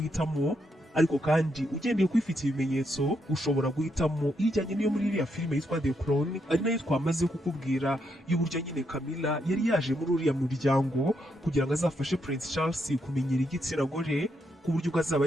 ariko kandi ugendeye kwifitiye ibimenyetso ushobora guhitamo ijyanye n'iyo muri iriya filime yitwa The Crown, ari nayo twamaze kukubwira y'uburyo nyine Camilla yari yaje muri uriya muryango kugira ngo azafashe Prince Charles kumenyera igitsina gore ku buryo ubwo azaba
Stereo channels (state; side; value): normal; both; correlation 0.79